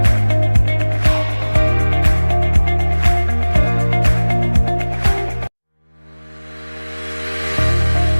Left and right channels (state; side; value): inverted; both; correlation -1.00